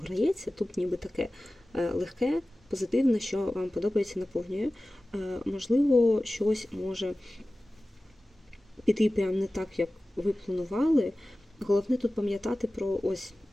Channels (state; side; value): normal; both; correlation 0.96